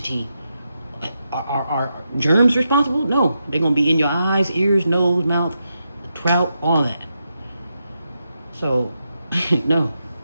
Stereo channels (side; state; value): both; inverted; correlation -0.85